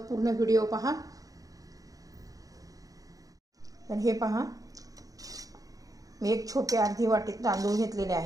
व्हिडिओ पहा. तर हे पहा, मी एक छोटी अर्धी वाटी तांदूळ घेतलेले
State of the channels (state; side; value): late; left; 0.17 ms